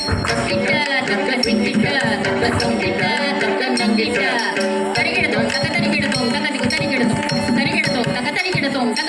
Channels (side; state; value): both; identical; correlation 1.00